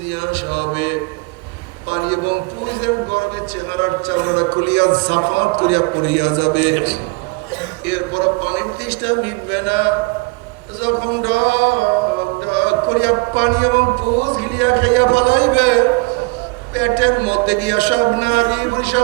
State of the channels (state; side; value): quieter; left; 28.2 dB